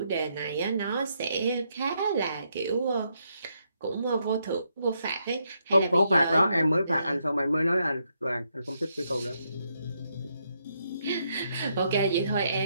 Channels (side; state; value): both; inverted; correlation -0.77